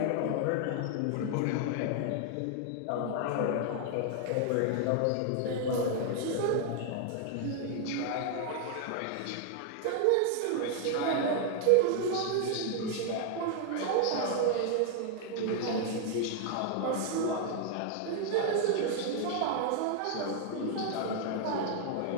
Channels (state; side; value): different; both; correlation 0.00